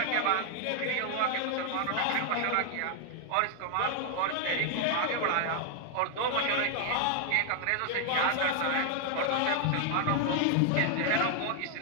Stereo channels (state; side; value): different; both; correlation 0.00